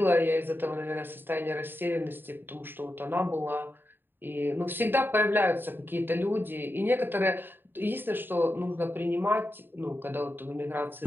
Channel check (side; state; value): left; late; 0.096 ms